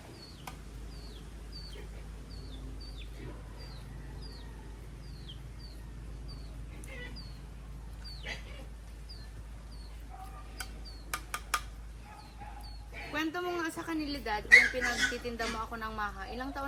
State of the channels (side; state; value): both; identical; correlation 1.00